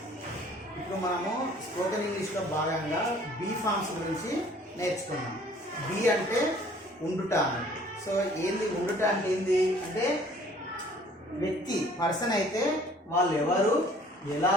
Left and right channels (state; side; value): normal; both; correlation 0.54